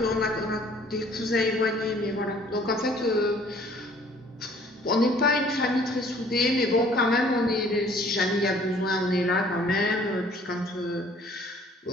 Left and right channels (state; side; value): normal; both; correlation 0.56